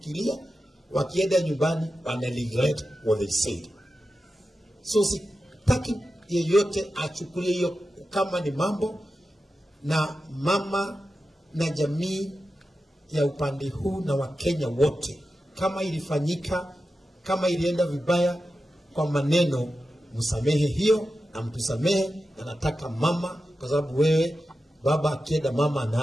wakienda nyumbani wana regret what they said. So sitaki yeyote achukulie hiyo kama ni mambo, na mama na jamii ya upande huu na Wakenya wote, kama ilifanyika, kama ilienda vibaya kwa maneno, msamehe hiyo na mtusamehe. Na nataka mama, kwa sababu wewe baba akienda mama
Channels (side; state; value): both; normal; correlation 0.92